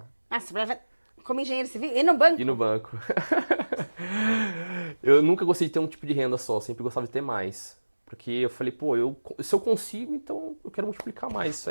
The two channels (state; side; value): inverted; both; correlation -1.00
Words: Ah, você trabalhava como engenheiro civil e no banco? E no banco. Eu nunca gostei de ter um tipo de renda só, sempre gostava de ter mais. Porque eu falei, pô, se eu consigo, então eu quero multiplicar mais isso